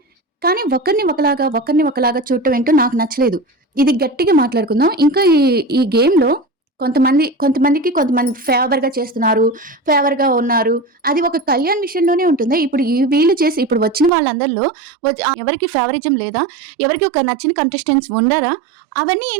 కానీ ఒకరిని ఒకలాగా చూడటం ఏంటో నాకు నచ్చలేదు. ఇది గట్టిగా మాట్లాడుకుందాం. ఇంకా ఈ గేమ్లో కొంతమంది ఫేవర్గా చేస్తున్నారు, ఫేవర్గా ఉన్నారు. అది ఒక కళ్యాణ్ విషయంలోనే ఉంటుంది. ఇప్పుడు వీళ్ళు చేసి ఇప్పుడు వచ్చిన వాళ్ళందరిలో ఎవరికి ఫేవరిజం లేదా, ఎవరికి ఒక నచ్చిన కంటెస్టెంట్స్ ఉండరా, అవన్నీ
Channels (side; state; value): left; drops out; at 14.1 s